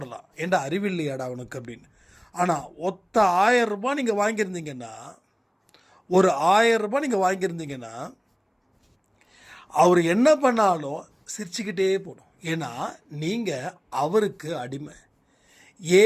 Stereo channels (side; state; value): both; identical; correlation 1.00